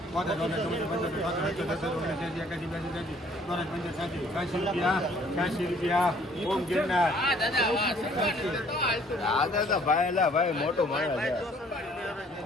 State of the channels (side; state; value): both; normal; correlation 0.58